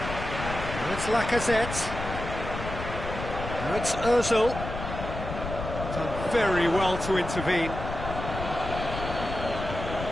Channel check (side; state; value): left; noise; rumble, 7 dB below the sound